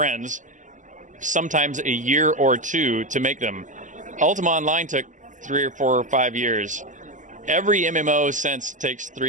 sometimes a year or 2 to make them. Ultima Online took 3 or 4 or 5 years. Every MMO since takes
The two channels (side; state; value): left; late; 0.37 ms